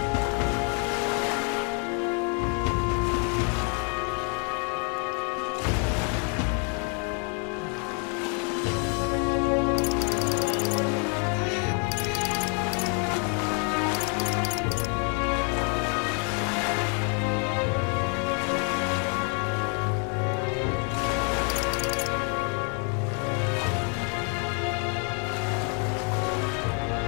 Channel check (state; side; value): quieter; right; 39.6 dB